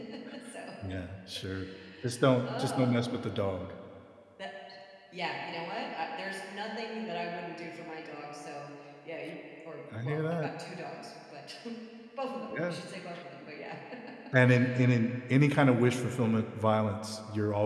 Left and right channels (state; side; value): identical; both; correlation 1.00